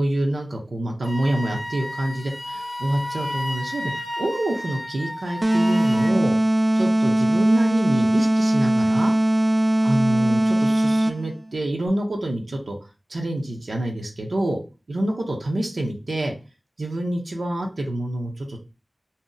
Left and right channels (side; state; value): both; normal; correlation 0.98